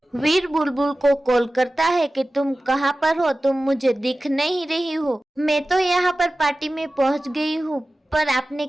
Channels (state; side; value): normal; both; correlation 0.96